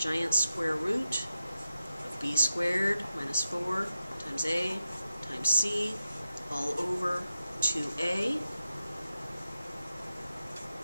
square root of b squared minus 4 times a times c all over 2a.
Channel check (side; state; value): both; inverted; correlation -0.89